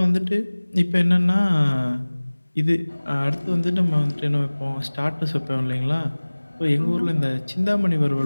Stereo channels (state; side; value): inverted; both; correlation -1.00